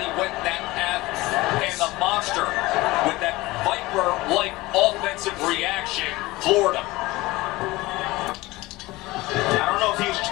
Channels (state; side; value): quieter; right; 20.2 dB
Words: went that path. And the monster, with that Viper-like offensive reaction, floored him. I don't know if he was